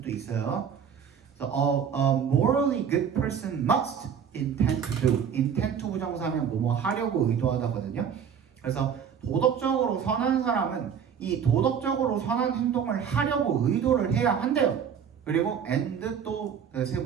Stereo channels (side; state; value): left; quieter; 7.6 dB